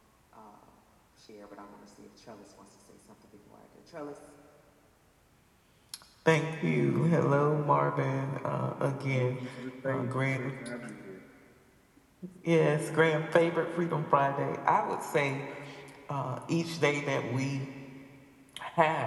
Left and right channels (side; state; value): both; identical; correlation 1.00